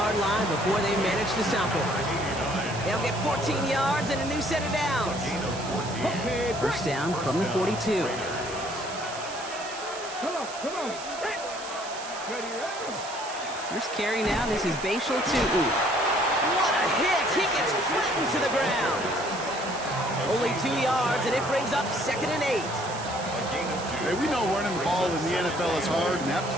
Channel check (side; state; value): right; noise; hiss, 13 dB below the sound